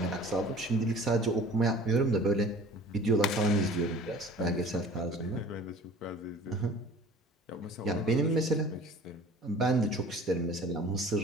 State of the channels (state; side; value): normal; both; correlation 0.46